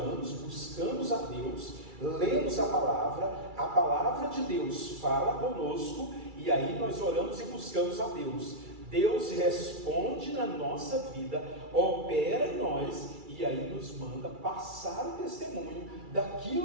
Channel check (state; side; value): late; left; 2.3 ms